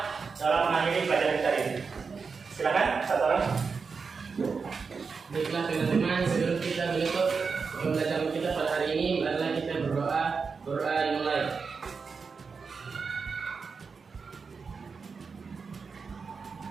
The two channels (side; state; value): left; quieter; 5.1 dB